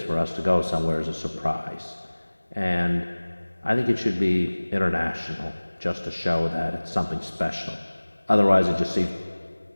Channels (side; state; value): both; inverted; correlation -1.00